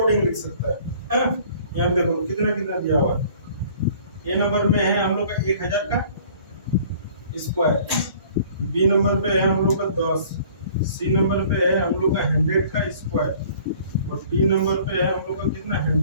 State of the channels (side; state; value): both; inverted; correlation -0.52